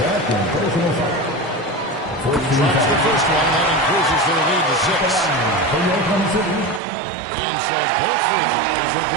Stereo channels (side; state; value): left; drops out; at 6.8 s